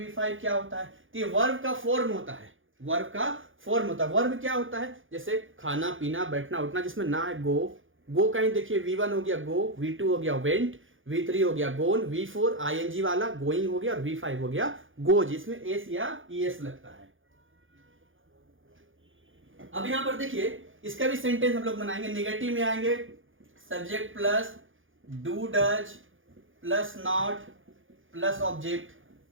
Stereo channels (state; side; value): late; left; 0.58 ms